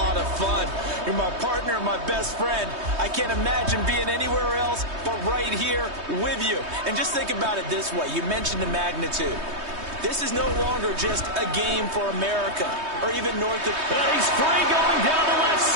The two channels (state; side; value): late; left; 3.2 ms